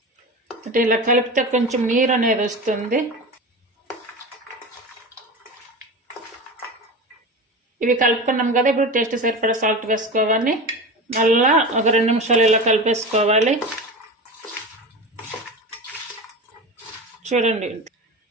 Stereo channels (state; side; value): normal; both; correlation 0.28